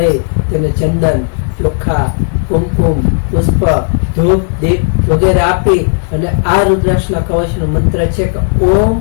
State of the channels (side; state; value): right; silent; digital silence